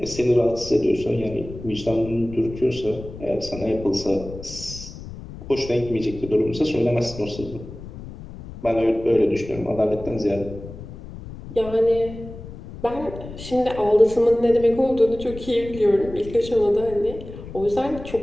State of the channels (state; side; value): noise; left; rumble, 13 dB below the sound